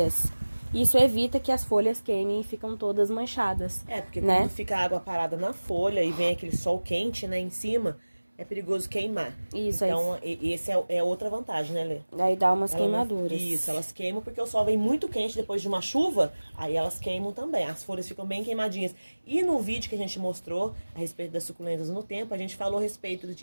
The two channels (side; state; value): both; inverted; correlation -1.00